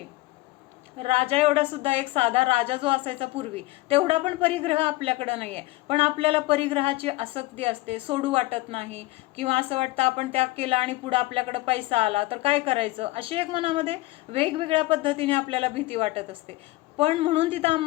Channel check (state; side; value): quieter; right; 19.8 dB